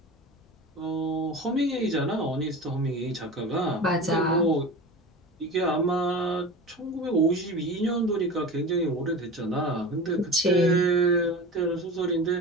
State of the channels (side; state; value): both; normal; correlation 0.32